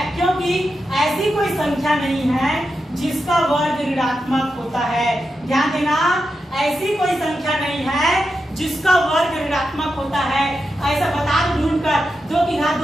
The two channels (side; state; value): both; normal; correlation 0.88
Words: क्योंकि ऐसी कोई संख्या नहीं है जिसका वर्ग ऋणात्मक होता है। ध्यान देना, ऐसी कोई संख्या नहीं है जिसका वर्ग ऋणात्मक होता है। ऐसा बता दो ढूंढ कर, 2 की घात